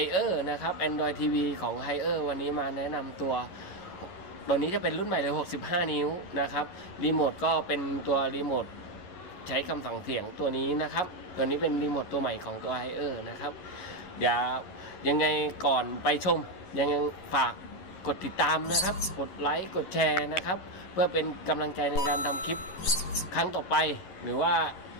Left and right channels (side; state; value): right; late; 11 ms